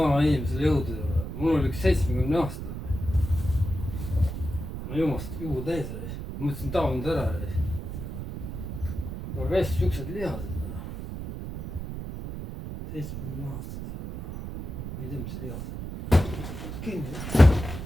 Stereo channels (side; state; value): right; noise; rumble, 7 dB below the sound